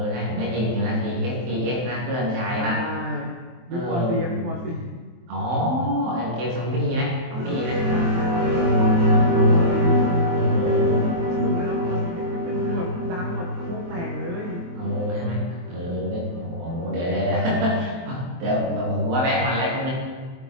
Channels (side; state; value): left; late; 23 ms